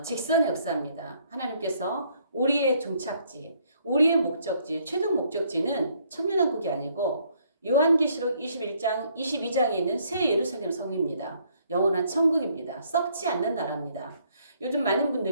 직선의 역사입니다. 하나님께서 우리의 종착지, 우리의 목적지, 최종 목적지는 천년왕국이 아니고 요한계시록 21장, 22장에 있는 새 예루살렘 성입니다. 영원한 천국입니다. 썩지 않는 나라입니다. 요즘 많은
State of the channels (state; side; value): inverted; both; correlation -0.67